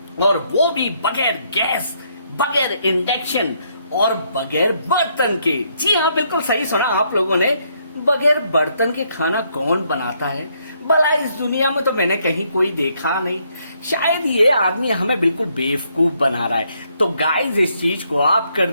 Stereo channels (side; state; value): both; inverted; correlation -0.72